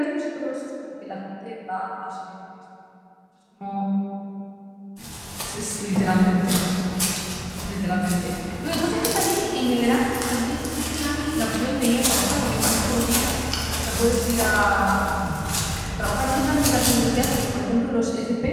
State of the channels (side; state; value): both; identical; correlation 1.00